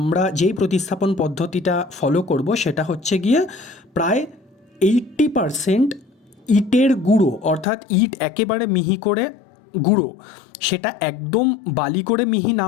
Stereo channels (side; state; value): right; drops out; at 7.7 s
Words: যেই প্রতিস্থাপন পদ্ধতিটা ফলো করব সেটা হচ্ছে গিয়ে প্রায় 80% ইটের গুঁড়ো, অর্থাৎ ইট একেবারে মিহি করে গুঁড়ো, সেটা একদম বালি করে মিহি না